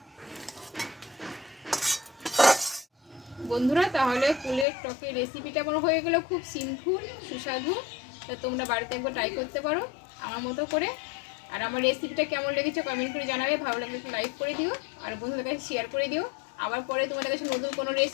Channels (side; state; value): right; drops out; at 4.7 s